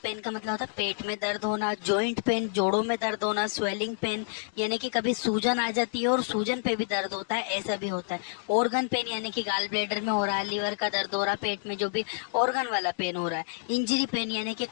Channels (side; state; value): right; silent; digital silence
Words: पेन का मतलब होता है पेट में दर्द होना, जॉइंट पेन जोड़ों में दर्द होना, स्वेलिंग पेन यानी कि कभी सूजन आ जाती है और सूजन पे भी दर्द होता है, ऐसा भी होता है। ऑर्गन पेन यानी कि गाल ब्लैडर में हो रहा है, लीवर का दर्द हो रहा है, पेट में जो भी ऑर्गन वाला पेन हो रहा है। इंजरी पेन यानी कि